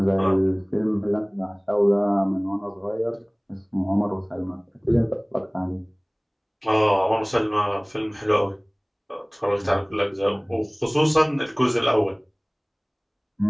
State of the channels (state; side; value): identical; both; correlation 1.00